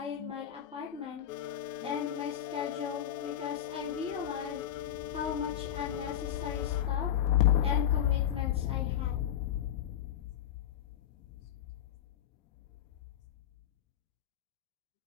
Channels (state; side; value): quieter; right; 10.4 dB